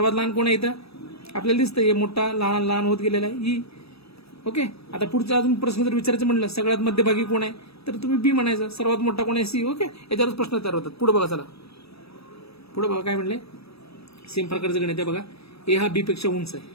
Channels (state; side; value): late; right; 0.78 ms